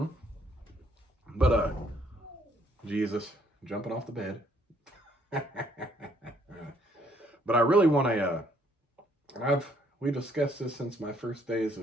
But, Jesus, jumping off the bed. But I really want and we discussed this since my first days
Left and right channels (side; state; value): both; normal; correlation 0.67